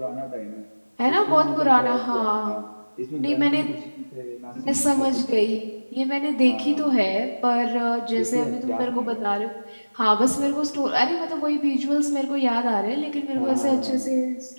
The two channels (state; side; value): inverted; both; correlation -1.00